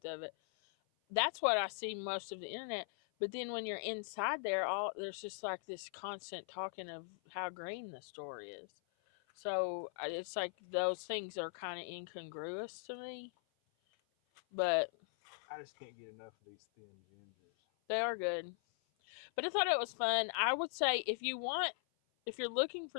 of it. That's what I see most of the internet. But then when you're inside there, there's just like this constant talking of how green the store is. So it's like those things are kind of incongruous to me. But I just can't get enough of these thin gingers. they are good. But I thought it was fun. I would say if you're looking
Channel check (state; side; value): silent; right; 51 dB below the other